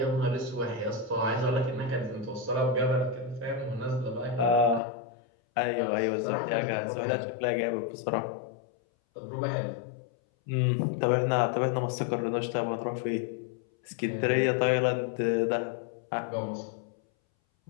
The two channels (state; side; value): drops out; right; at 4.8 s